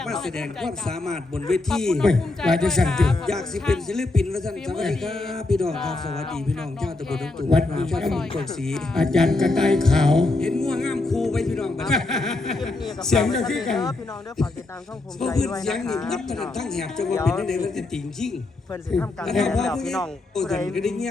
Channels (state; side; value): quieter; right; 3.1 dB